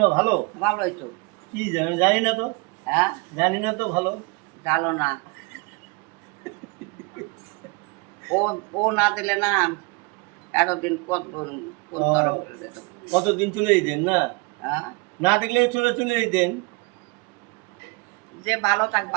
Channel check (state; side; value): quieter; left; 28.5 dB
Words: ভালো? ভালোই তো। কি জানি জানি না তো। হ্যাঁ জানি না তো ভালো। জানো না, ও ও না দিলে না এতদিন কত কোন ও, তরফ যেত। কতদিন চলে যেতেন না? হ্যাঁ না দেখলে চলে চলে যেতেন। যে ভালো থাক